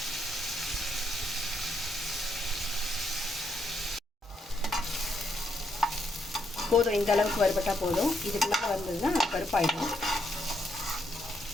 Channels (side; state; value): both; normal; correlation 0.77